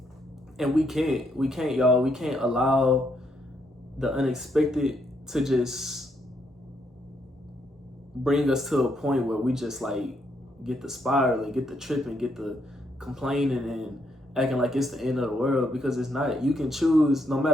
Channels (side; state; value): both; normal; correlation 0.75